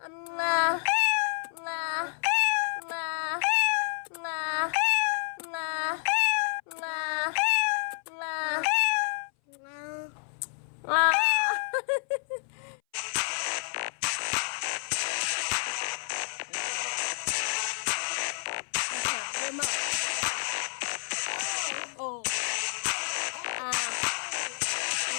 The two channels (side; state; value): right; silent; 58 dB below the other